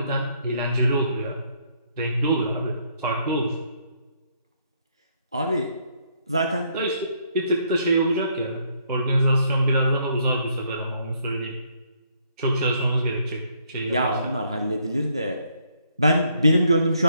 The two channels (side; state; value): both; inverted; correlation -0.70